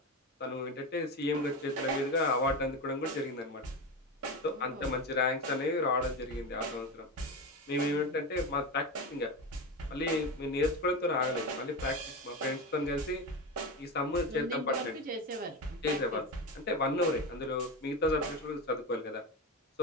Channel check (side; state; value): both; normal; correlation 0.20